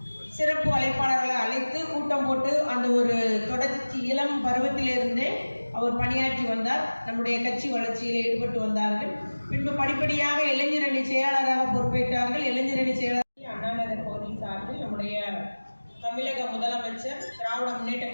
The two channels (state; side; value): inverted; both; correlation -1.00